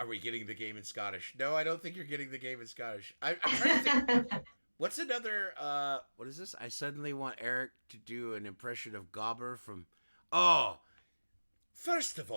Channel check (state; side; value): inverted; both; correlation -1.00